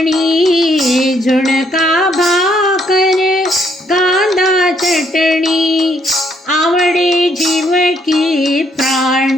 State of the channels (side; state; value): both; normal; correlation 0.69